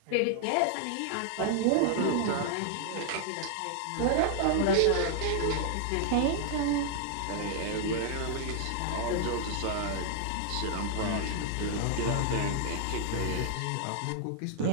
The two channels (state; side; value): different; both; correlation 0.00